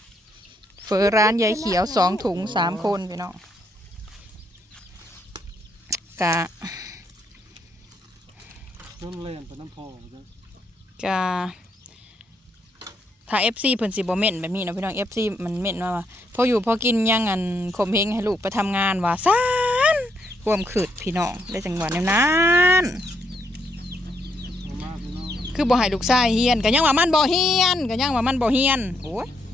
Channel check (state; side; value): normal; both; correlation 0.75